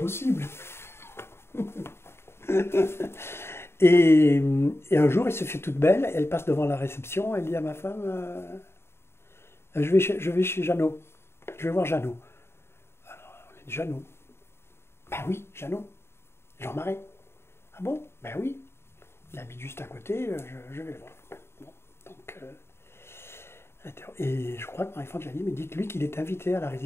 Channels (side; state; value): right; late; 0.12 ms